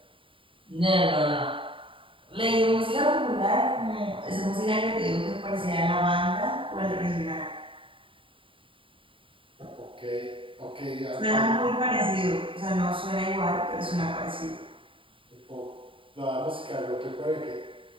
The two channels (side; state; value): left; late; 0.25 ms